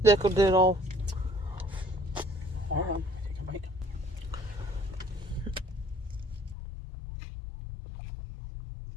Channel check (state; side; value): drops out; right; at 6.6 s